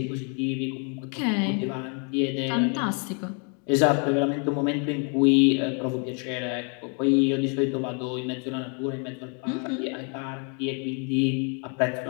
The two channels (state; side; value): quieter; right; 38.4 dB